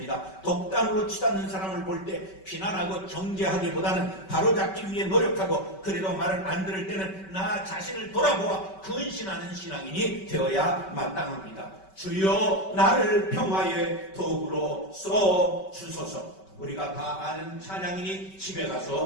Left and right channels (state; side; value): late; right; 5.2 ms